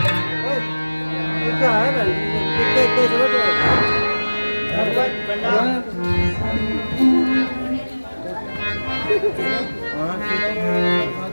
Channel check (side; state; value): both; inverted; correlation -1.00